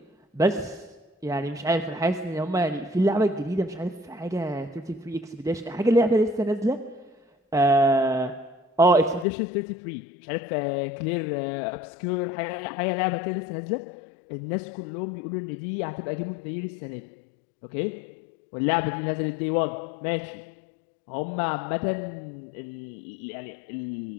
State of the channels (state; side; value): drops out; right; at 9.2 s